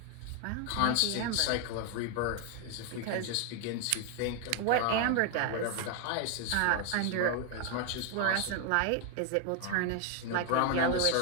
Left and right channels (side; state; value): both; different; correlation 0.01